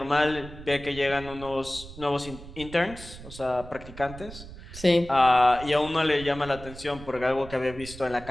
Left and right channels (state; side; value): noise; right; rumble, 15 dB below the sound